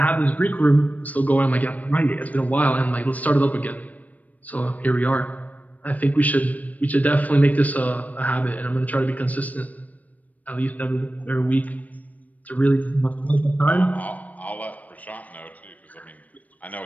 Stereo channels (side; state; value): right; late; 0.073 ms